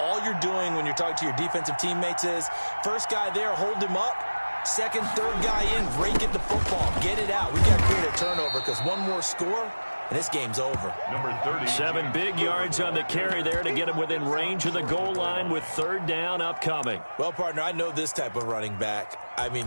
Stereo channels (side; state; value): both; inverted; correlation -1.00